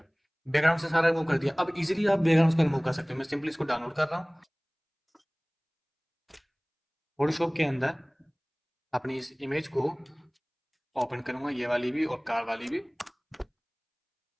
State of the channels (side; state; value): both; identical; correlation 1.00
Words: बैकग्राउंड से सारा रिमूव कर दिया। अब इजीली आप बैकग्राउंड को रिमूव कर सकते हो। मैं सिंपली इसको डाउनलोड कर रहा हूँ फोटोशॉप के अंदर, अपनी इस इमेज को ओपन करूंगा, ये वाली भी और कार वाली भी।